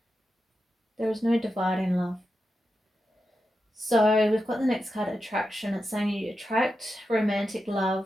There is no divide in love. So we've got the next card, attraction. It's saying you attract romantic love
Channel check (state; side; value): normal; both; correlation 0.89